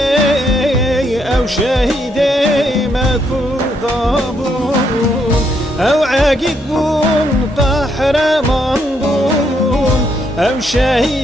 شهیده مکودا بون او عقید بون قهرمان بون او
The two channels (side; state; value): both; normal; correlation 0.75